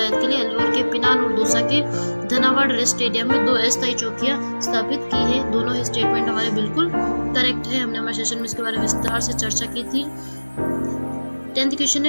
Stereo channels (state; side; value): inverted; both; correlation -1.00